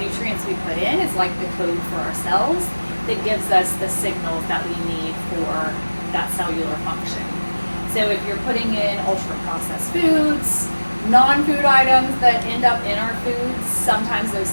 we put in is like the code for our cells that gives us the signals that we need for that cellular function. So if you're putting in ultra-processed foods, non-food items that end up in our foods, sometimes those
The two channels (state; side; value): inverted; both; correlation -1.00